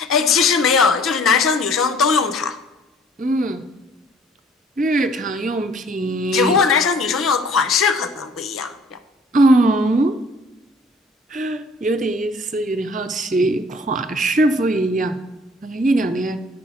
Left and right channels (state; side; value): normal; both; correlation 0.55